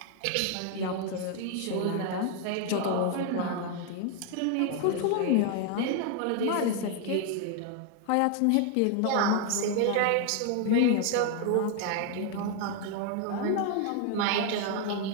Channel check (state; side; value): different; both; correlation 0.01